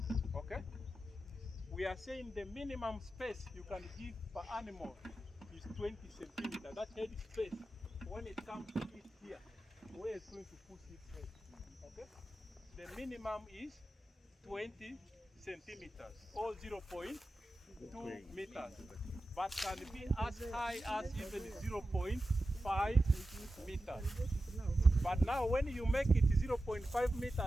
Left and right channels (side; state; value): both; normal; correlation 0.93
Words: Okay? We are saying the minimum space you can give per animal is 20 centimeters. That head space, when it comes to it here, where it's going to push its head. Okay? The minimum is 20 centimeters or 0.2 meters, but can be as high as even 0.5 meters. But now when you make it 0.5